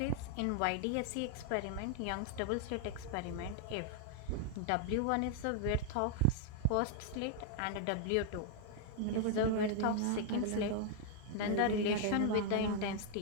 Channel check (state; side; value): different; both; correlation 0.00